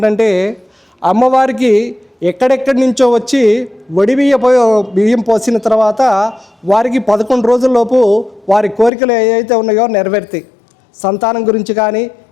అమ్మవారికి ఎక్కడెక్కడి నుంచో వచ్చి బియ్యం పోసిన తర్వాత వారికి 11 రోజుల్లోపు వారి కోరికలు ఏవైతే ఉన్నాయో నెరవేరుతాయి. సంతానం గురించి కానీ,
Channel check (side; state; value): right; drops out; at 8.9 s